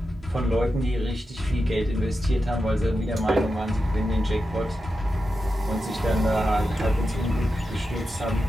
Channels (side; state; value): both; normal; correlation 0.89